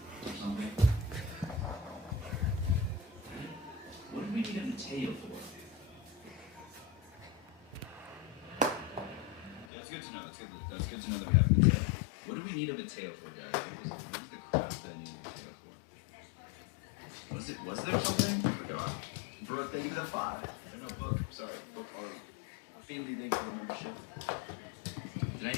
or something? What did we need a Mateo for? That's good to know. That's good to know that we have a Mateo. What do we need a Mateo for, guys? What was the crap that I need a Mateo for? Was there something? I forgot. Brooke, thank you for the 5. No, Book. Sorry, Book. Our family, thank you for the membership. Did I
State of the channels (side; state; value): right; drops out; at 9.7 s